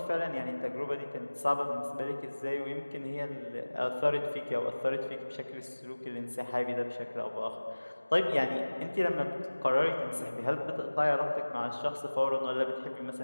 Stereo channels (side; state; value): both; inverted; correlation -1.00